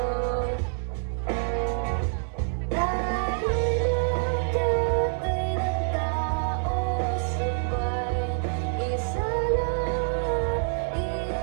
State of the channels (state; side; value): silent; left; 60 dB below the other